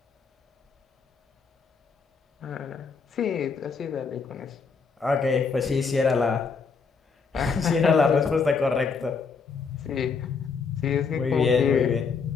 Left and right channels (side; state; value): right; quieter; 5.2 dB